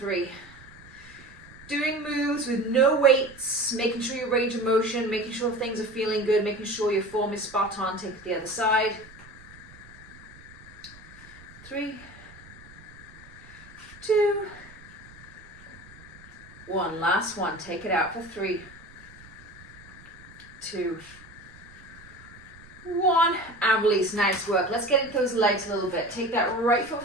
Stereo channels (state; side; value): noise; right; rumble, 22 dB below the sound